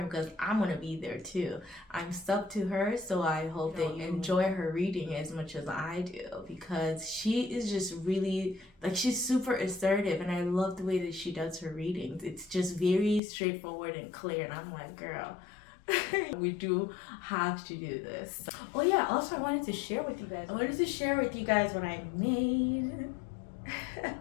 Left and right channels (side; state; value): right; drops out; at 13.2 s